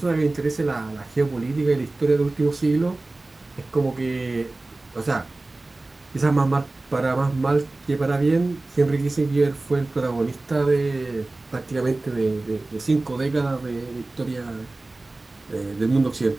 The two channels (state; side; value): quieter; left; 3.0 dB